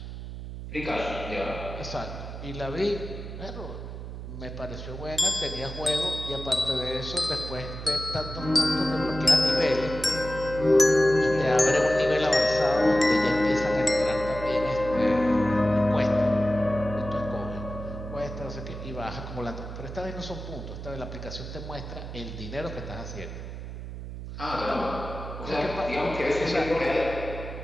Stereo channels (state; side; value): noise; right; hum, 9 dB below the sound